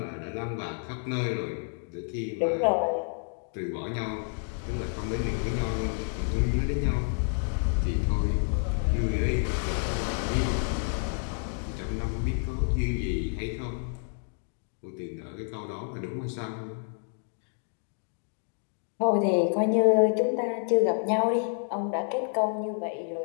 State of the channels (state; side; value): silent; right; 55 dB below the other